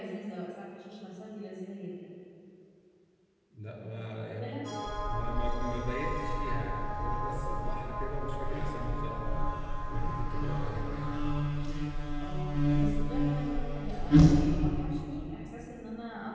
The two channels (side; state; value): both; identical; correlation 1.00